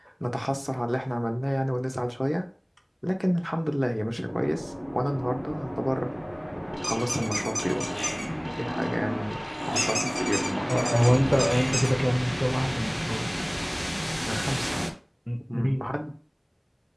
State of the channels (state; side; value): identical; both; correlation 1.00